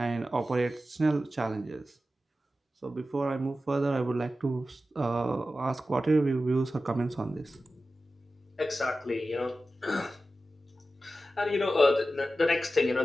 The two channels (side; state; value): both; normal; correlation 0.93